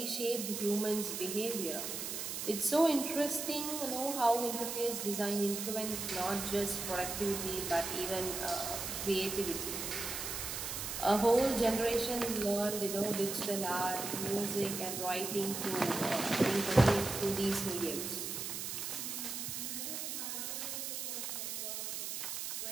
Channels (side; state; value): right; noise; hiss, 4 dB below the sound